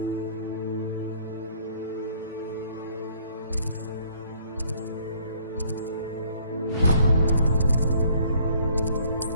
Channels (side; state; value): both; inverted; correlation -0.60